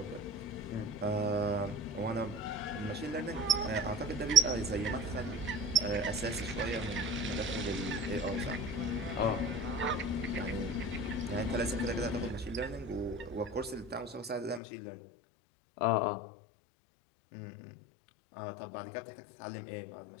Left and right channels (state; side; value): drops out; right; at 14.6 s